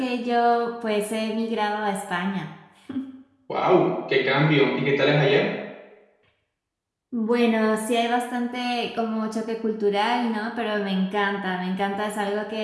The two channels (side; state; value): both; identical; correlation 1.00